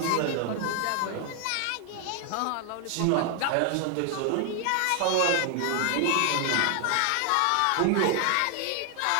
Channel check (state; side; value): different; both; correlation 0.00